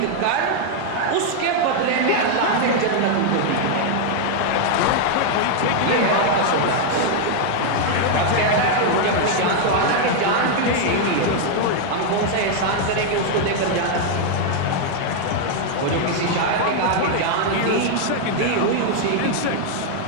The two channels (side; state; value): both; different; correlation 0.00